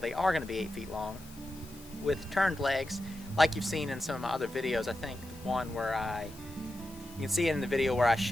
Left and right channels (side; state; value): left; noise; hiss, 21 dB below the sound